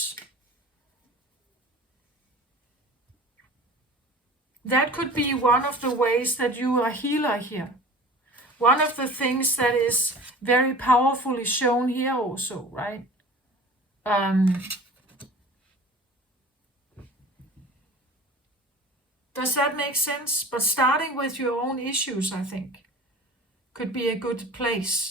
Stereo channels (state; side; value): normal; both; correlation 0.41